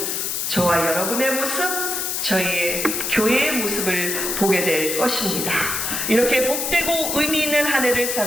저와 여러분의 모습, 저희의 교회의 모습을 보게 될 것입니다. 이렇게 복되고 의미 있는 한 해를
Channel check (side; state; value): left; noise; hiss, 1 dB below the sound